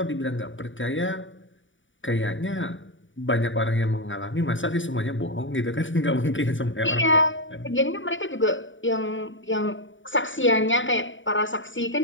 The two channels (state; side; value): late; right; 0.56 ms